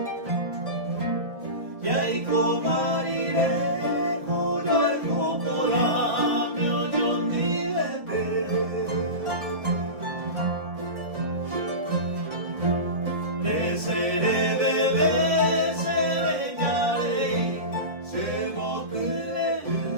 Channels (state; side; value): late; left; 1.7 ms